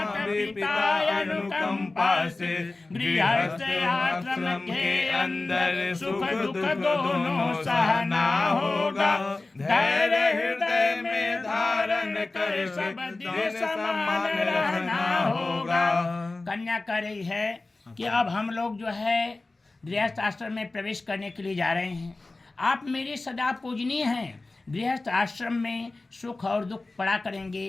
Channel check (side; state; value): right; quieter; 3.2 dB